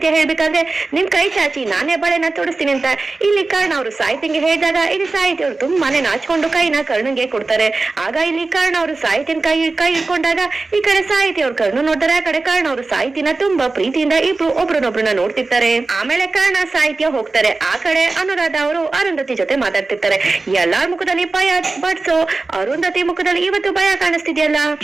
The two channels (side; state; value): left; quieter; 3.6 dB